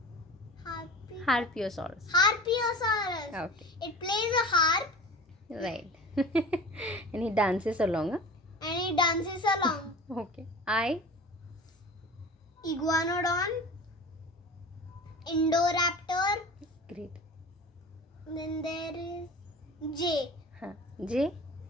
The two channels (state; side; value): normal; both; correlation 0.37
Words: Harpiosaurus. Harpiosaurus. Okay. It plays a harp Right. And he dances along. Huh? and it dances along. Okay. I? Iguanodon, Indoraptor. Great. Then there is J, Huh. J?